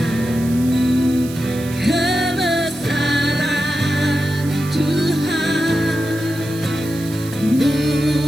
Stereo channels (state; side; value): noise; right; hiss, 15 dB below the sound